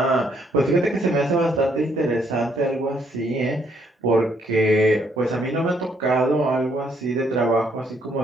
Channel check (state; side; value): normal; both; correlation 0.70